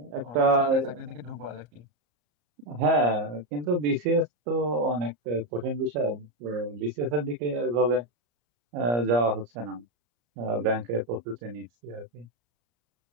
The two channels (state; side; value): late; left; 34 ms